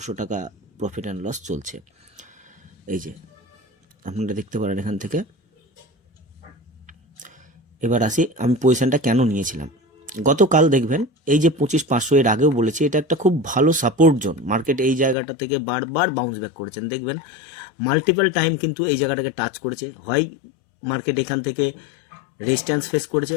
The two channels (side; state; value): right; drops out; at 15.2 s